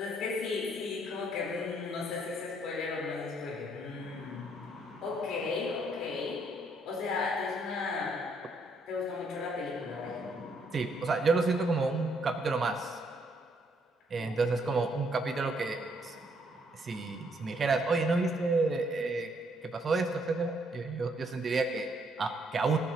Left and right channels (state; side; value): normal; both; correlation 0.70